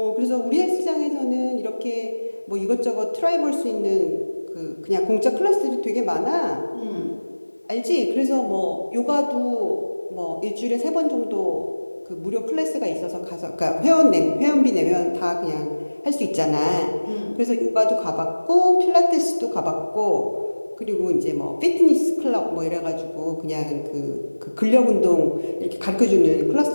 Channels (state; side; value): inverted; both; correlation -1.00